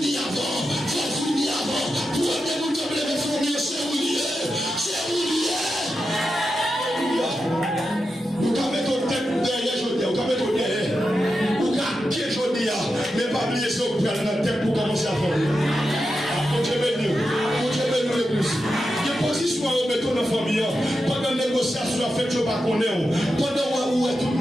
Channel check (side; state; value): both; normal; correlation 0.89